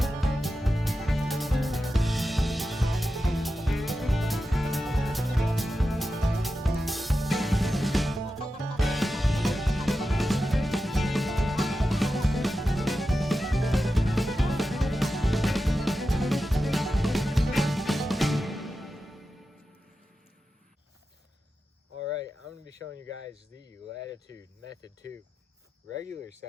Alright, I'm going to be showing you guys the Latitude Method 2 regular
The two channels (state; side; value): normal; both; correlation 0.91